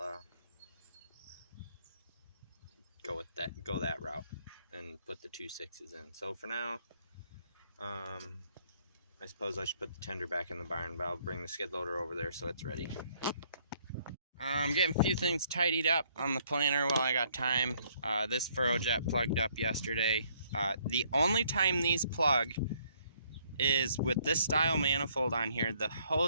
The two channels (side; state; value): both; inverted; correlation -0.66